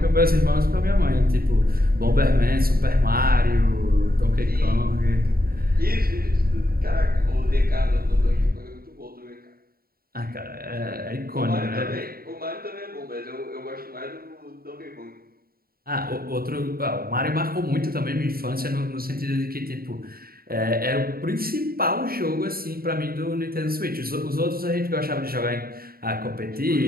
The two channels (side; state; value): left; late; 0.43 ms